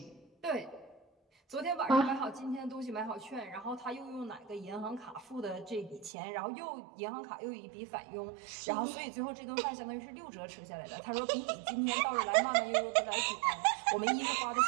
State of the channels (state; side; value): drops out; left; at 6.1 s